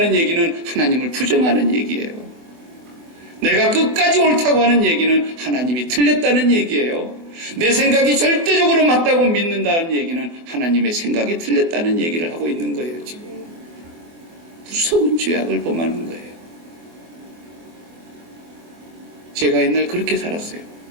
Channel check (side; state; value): left; late; 24 ms